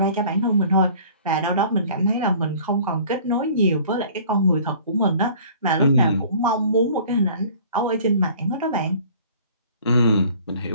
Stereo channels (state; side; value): inverted; both; correlation -0.49